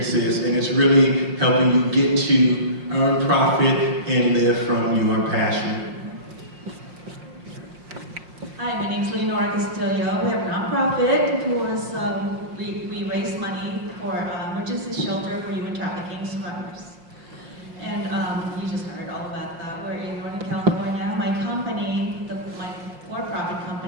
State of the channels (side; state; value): left; late; 5.6 ms